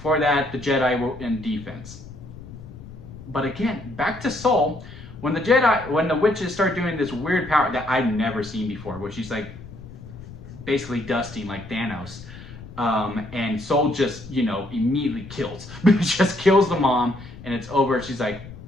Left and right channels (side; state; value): left; noise; rumble, 15 dB below the sound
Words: for that, the Jedi were in defense. But again, back to Soul. When the witches start doing this weird power that I've never seen before, where she's like basically dusting like Thanos, and Soul just, immediately kills. Just kills the mom, and it's over. She's like,